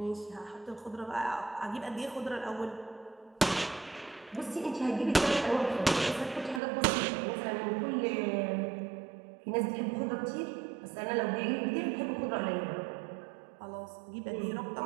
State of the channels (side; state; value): left; drops out; at 6.6 s